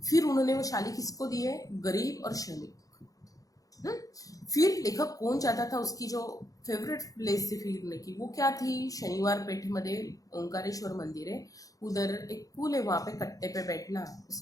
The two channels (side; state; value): right; late; 0.17 ms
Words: फिर उन्होंने वो शाली किसको दी है, गरीब और श्रमिक. फिर लेखक कौन चाहता था, उसकी जो फेवरेट प्लेस थी फिरने की वो क्या थी, शनिवार पेठ में ओंकारेश्वर मंदिर है, उधर एक पुल है, वहां पे कट्टे पे बैठना